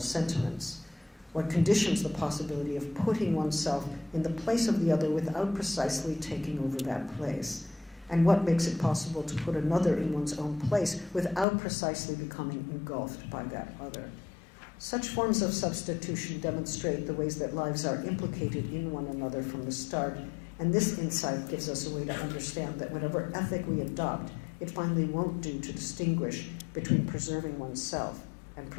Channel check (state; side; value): drops out; right; at 11.5 s